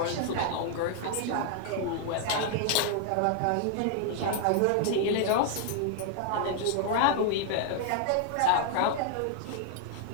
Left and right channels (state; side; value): different; both; correlation 0.00